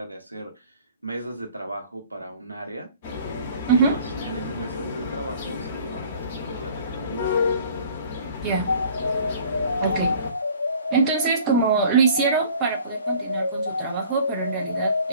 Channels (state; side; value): inverted; both; correlation -0.51